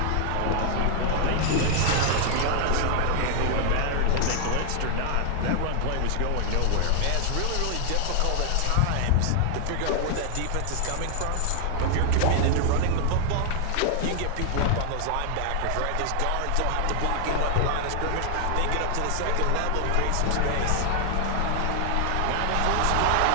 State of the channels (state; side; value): different; both; correlation 0.00